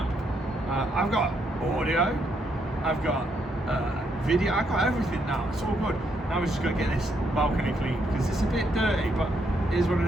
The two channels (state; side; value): normal; both; correlation 0.75